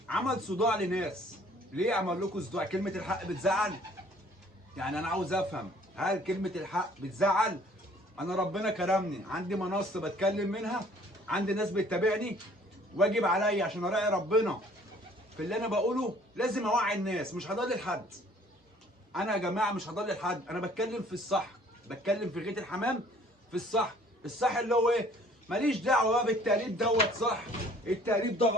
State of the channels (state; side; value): normal; both; correlation 0.56